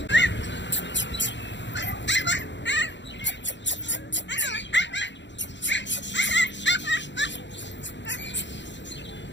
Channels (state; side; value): late; right; 0.52 ms